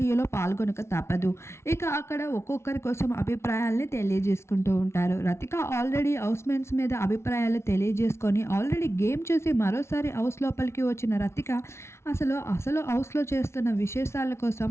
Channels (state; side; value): late; right; 0.13 ms